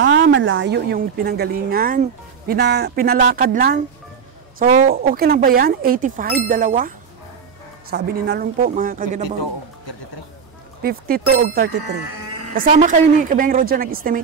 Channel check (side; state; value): left; quieter; 6.4 dB